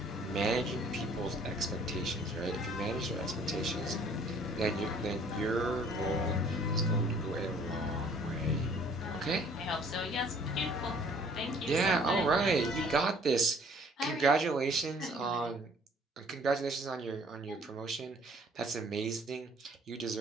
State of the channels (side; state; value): both; normal; correlation 0.57